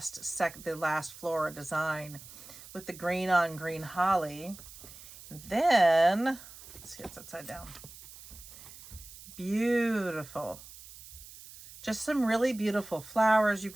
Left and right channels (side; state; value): right; noise; hiss, 17 dB below the sound